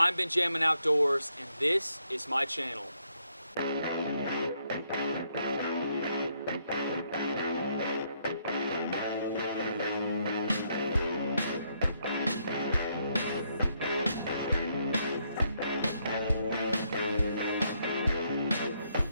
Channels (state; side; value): inverted; both; correlation -0.74